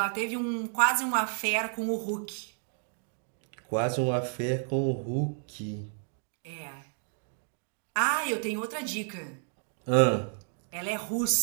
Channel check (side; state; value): left; silent; 57 dB below the other